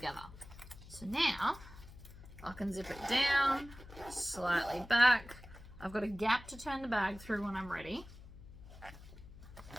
So now I can zip it down, slightly back. I've got a gap to turn the bag through when I'm ready.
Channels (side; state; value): left; noise; hum, 17 dB below the sound